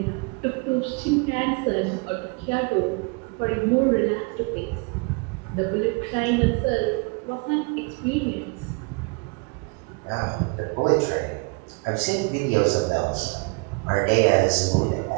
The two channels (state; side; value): quieter; left; 31.1 dB